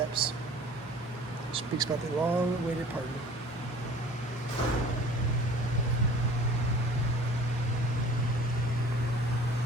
Speaks about the long-awaited pardon.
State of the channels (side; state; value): both; normal; correlation 0.47